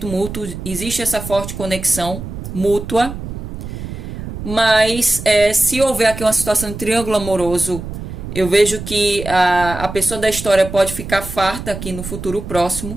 mútuo, existe essa forte conexão mútua, mas se houver aqui uma situação de triângulo amoroso, eu vejo que a pessoa da história pode ficar farta aqui no futuro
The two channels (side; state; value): right; noise; rumble, 9 dB below the sound